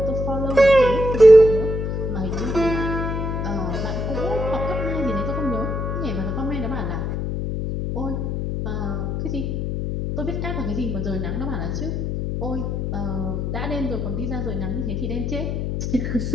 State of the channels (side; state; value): left; noise; hum, 2 dB below the sound